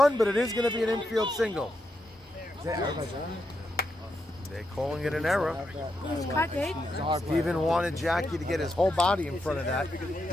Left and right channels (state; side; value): normal; both; correlation 0.83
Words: but it is going to be an infield single. They're calling it an error. Steven wanted Jackie to get his whole body in front of that.